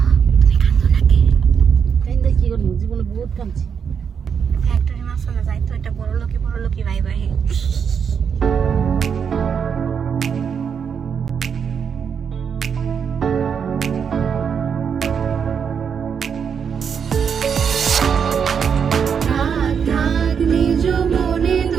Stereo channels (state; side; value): quieter; left; 7.0 dB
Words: তুমি কান্দো নাকি? কাইন্দা কি করব? জীবনে বহুত কাঁদছি। ফ্যাক্টরি মাসলে যাই তো, এটা বড় লোকি ভাই ভাই।